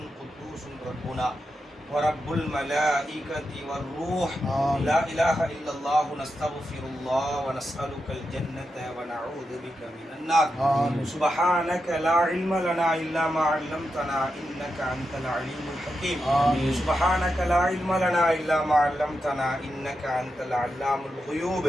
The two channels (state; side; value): normal; both; correlation 0.88